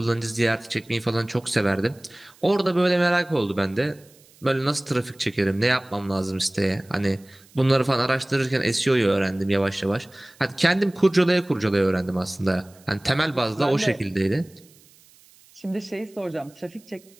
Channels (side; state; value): right; noise; hiss, 28 dB below the sound